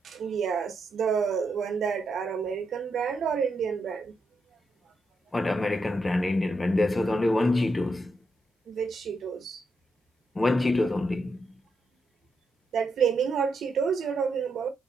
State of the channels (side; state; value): both; normal; correlation 0.82